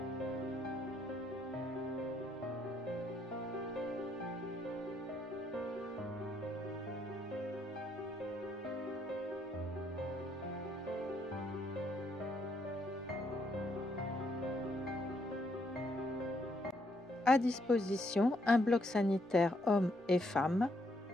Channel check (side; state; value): both; normal; correlation 0.73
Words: À disposition, un bloc sanitaire hommes et femmes,